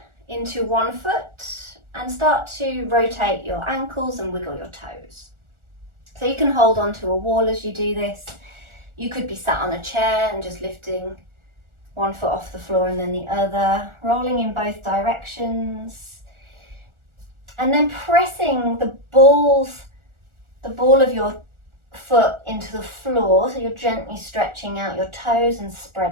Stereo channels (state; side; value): late; left; 1.4 ms